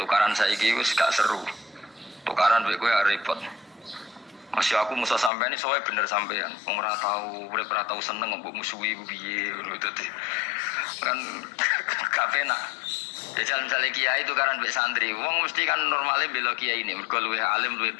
saiki wis gak seru. Tukaran kowe repot. Masih aku musuh sampean ini soalnya bener sampean. Wong ora tau seneng mbok musuhi piye ngono dadi. Kan gak penak. Jajal misalnya kiai itu kan mbek santri, wong mesti kan normalnya bela kiai ini, mergo luwih alim luwih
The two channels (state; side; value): drops out; right; at 5.3 s